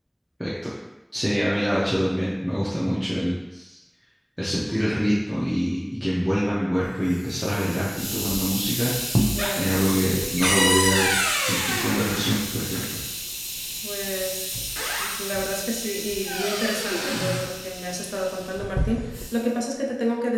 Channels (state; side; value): identical; both; correlation 1.00